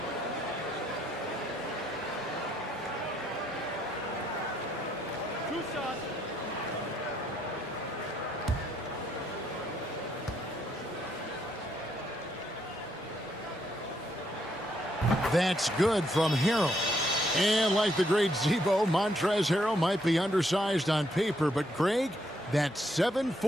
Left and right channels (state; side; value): normal; both; correlation 0.73